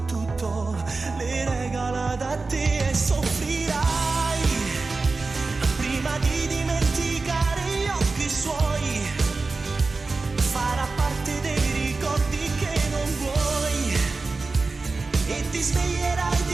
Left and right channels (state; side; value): quieter; left; 3.8 dB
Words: tutto, l'hai regalato a te e soffrirai prima di dimenticare gli occhi suoi. Farà parte dei ricordi che non vuoi e ti sveglierai